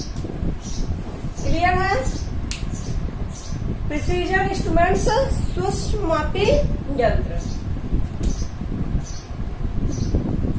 क्लियर है? प्रिसीजन इंस्ट्रूमेंट्स, सूक्ष्म मापी यंत्र।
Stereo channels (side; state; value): both; identical; correlation 1.00